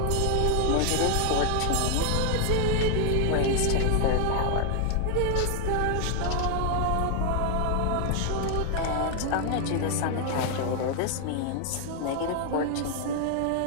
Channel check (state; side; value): different; both; correlation 0.00